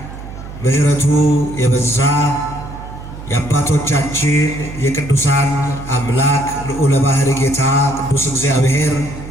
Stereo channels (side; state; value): right; noise; hum, 12 dB below the sound